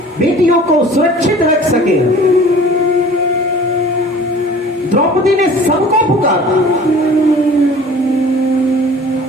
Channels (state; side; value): normal; both; correlation 0.46